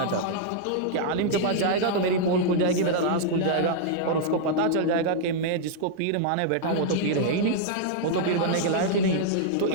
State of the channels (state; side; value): different; both; correlation -0.01